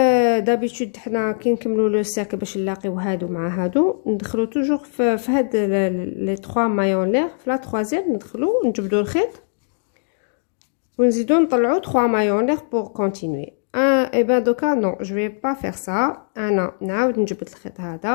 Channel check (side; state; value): right; silent; digital silence